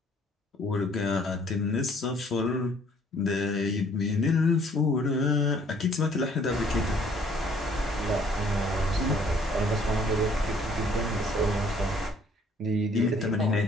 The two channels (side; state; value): both; normal; correlation 0.60